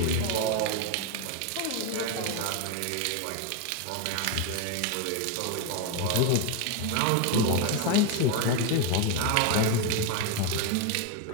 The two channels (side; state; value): both; different; correlation 0.02